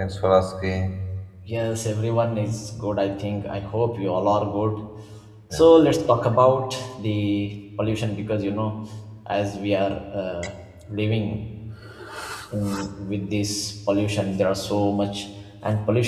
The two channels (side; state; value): both; identical; correlation 1.00